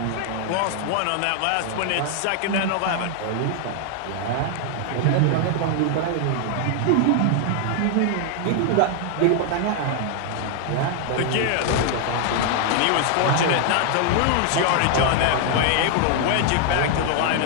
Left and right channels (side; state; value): both; different; correlation 0.00